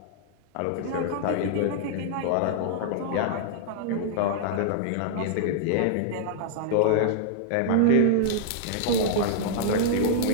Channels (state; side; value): different; both; correlation -0.01